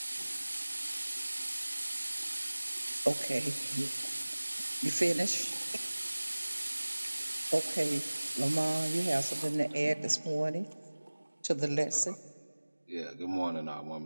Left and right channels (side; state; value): both; inverted; correlation -1.00